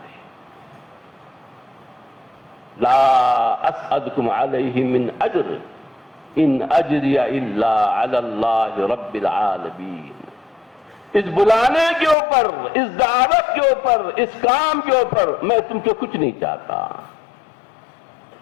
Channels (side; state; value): right; drops out; at 12.2 s